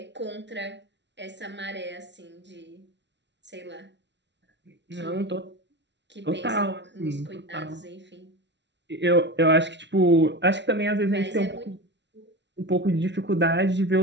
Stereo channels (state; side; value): late; left; 0.51 ms